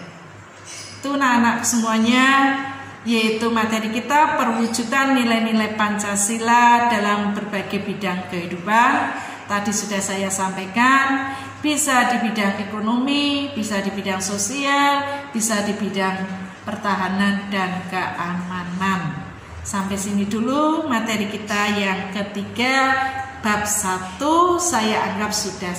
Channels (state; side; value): identical; both; correlation 1.00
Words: Itu anak-anak semuanya, yaitu materi kita perwujudan nilai-nilai Pancasila dalam berbagai bidang kehidupan. Tadi sudah saya sampaikan, bisa di bidang ekonomi, bisa di bidang sosial, bisa di bidang pertahanan dan keamanan. Sampai sini dulu materi kita yang ketiga, bab 1 saya anggap sudah